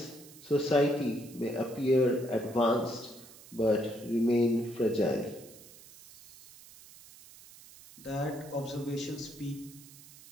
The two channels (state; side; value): noise; right; hiss, 20 dB below the sound